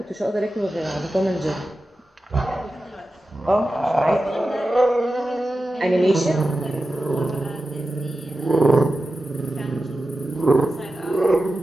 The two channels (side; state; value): both; normal; correlation 0.93